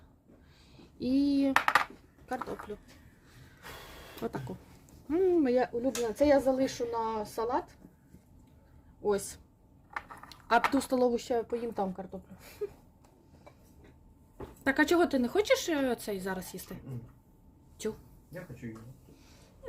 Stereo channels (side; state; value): both; identical; correlation 1.00